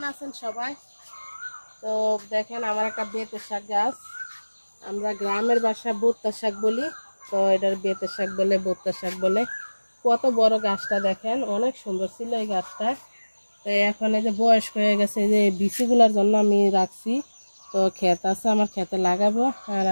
আছেন সবাই? তো দেখেন আমার একটা বেতের শাক গাছ, আমরা গ্রামের ভাষায় বোত্তা শাক বলি, তো এটার বেতের শাক বলে, বোত্তা শাক বলে। কত বড় গাছটা দেখেন, অনেক সুন্দর ছিল এই গাছটা। তো এখন এই যে বয়স্ক হয়ে গেছে, এই যে বিচিগুলোর জন্য আমি রাখছি। তো ক্ষেত আছে, আমার ক্ষেতে লাগাবো। আর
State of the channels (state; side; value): inverted; both; correlation -1.00